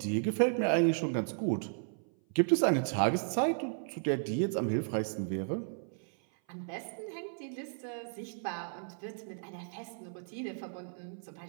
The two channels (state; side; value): silent; left; 55 dB below the other